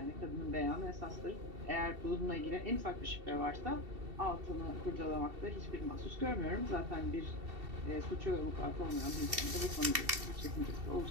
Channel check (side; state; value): left; late; 2.7 ms